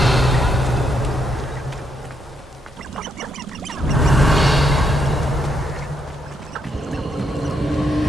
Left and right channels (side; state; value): both; normal; correlation 0.77